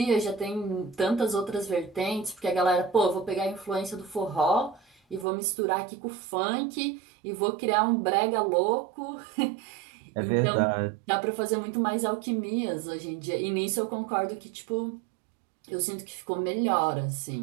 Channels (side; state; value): left; drops out; at 5.2 s